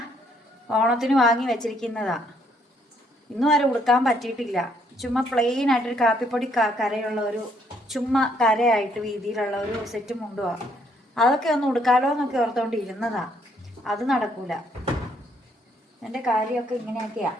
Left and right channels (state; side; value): normal; both; correlation 0.69